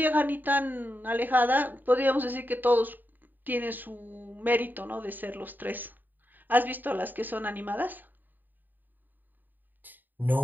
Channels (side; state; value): left; late; 0.089 ms